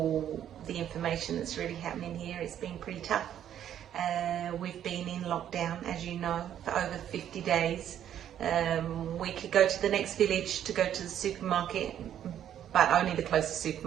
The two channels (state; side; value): quieter; left; 10.3 dB